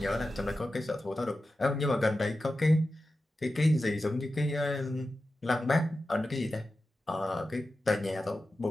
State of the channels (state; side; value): normal; both; correlation 0.93